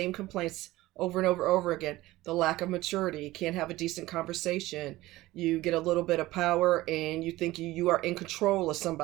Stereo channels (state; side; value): quieter; left; 17.7 dB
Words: complaints over and over again. The lack of maturity, can't have a decent conversation, you get a little bit of power and you think you are in control of